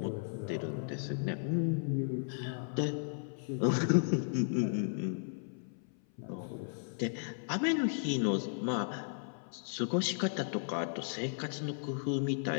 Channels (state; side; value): silent; right; 54 dB below the other